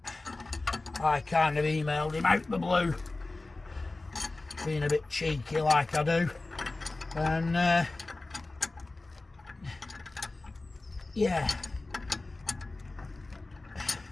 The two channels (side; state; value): right; quieter; 3.2 dB